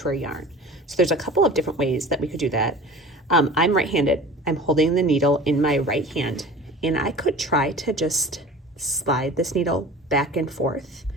our yarn. So there's a couple of different ways that we could do that. I'm right-handed. I'm holding the needle in my right hand, and I could try to just slide this needle back and forth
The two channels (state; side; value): normal; both; correlation 0.39